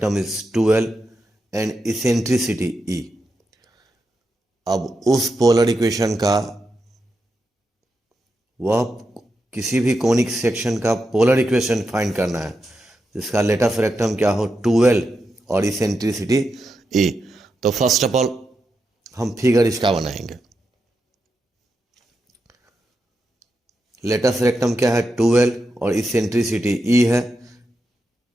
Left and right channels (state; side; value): normal; both; correlation 0.87